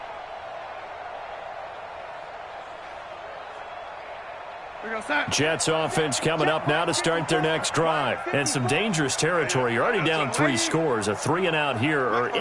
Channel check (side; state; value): both; identical; correlation 1.00